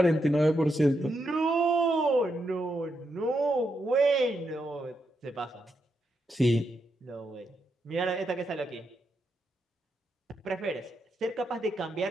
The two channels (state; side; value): normal; both; correlation 0.83